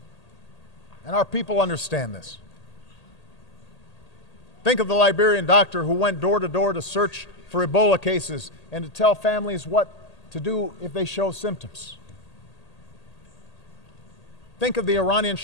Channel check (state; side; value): late; right; 1.8 ms